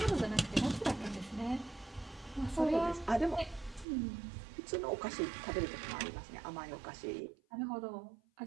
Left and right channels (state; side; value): drops out; left; at 3.9 s